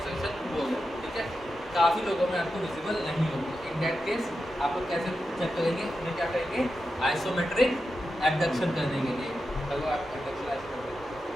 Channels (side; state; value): both; normal; correlation 0.89